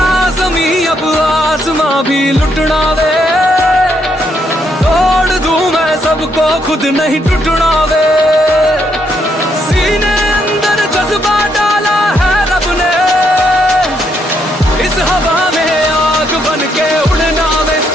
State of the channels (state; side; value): normal; both; correlation 0.75